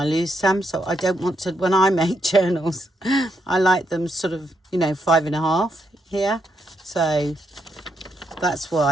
lose some. So I don't want to, when I make journals, I like them sort of, you know, 5.5 here. So that's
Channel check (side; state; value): both; normal; correlation 0.79